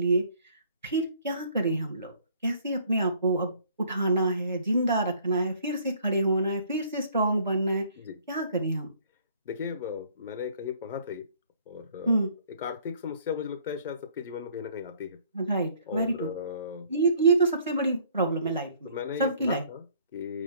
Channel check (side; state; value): both; inverted; correlation -0.58